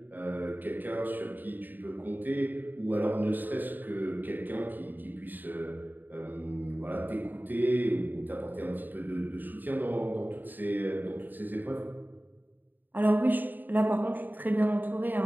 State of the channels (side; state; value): left; late; 0.089 ms